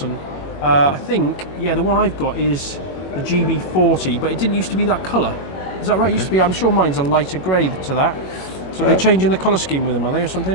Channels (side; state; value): right; late; 21 ms